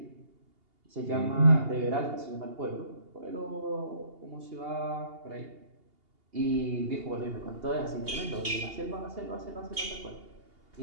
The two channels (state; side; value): late; left; 2.8 ms